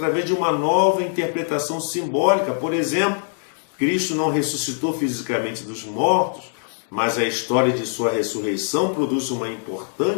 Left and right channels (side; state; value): right; silent; digital silence